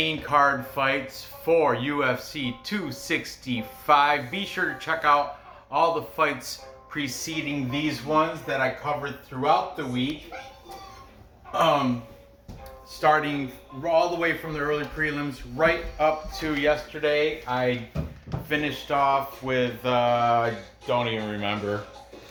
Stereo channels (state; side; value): identical; both; correlation 1.00